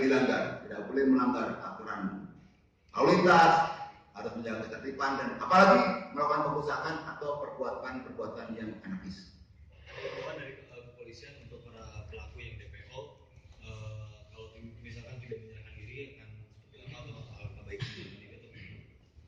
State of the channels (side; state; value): both; identical; correlation 1.00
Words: dilanggar, tidak boleh melanggar aturan lalu lintas, harus menjaga ketertiban dan apalagi melakukan pengusahaan atau perbuatan yang anarkis. Dari kepolisian untuk para pelaku yang DPO, kalau misalkan tidak menyerahkan diri akan seperti apa atau alangkah baiknya gitu?